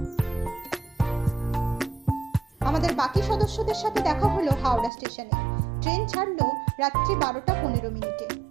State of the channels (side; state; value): left; drops out; at 4.9 s